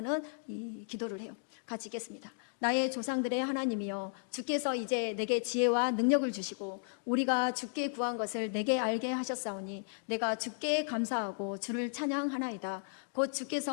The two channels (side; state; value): right; silent; digital silence